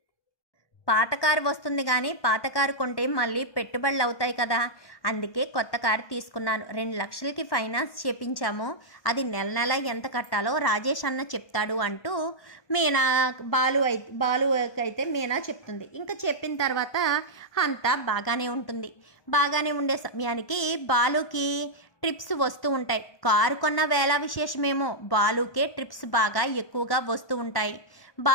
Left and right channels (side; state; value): right; late; 1.2 ms